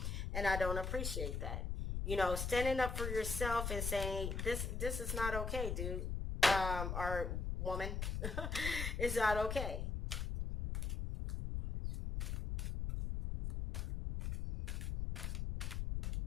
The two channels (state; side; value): noise; left; rumble, 1 dB below the sound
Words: and I don't appreciate that. You know, standing up for yourself and saying, this is not okay, dude. Or woman. It's not okay.